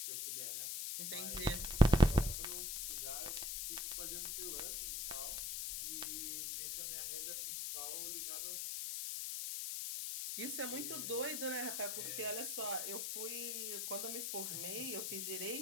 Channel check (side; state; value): left; noise; hiss, 2 dB below the sound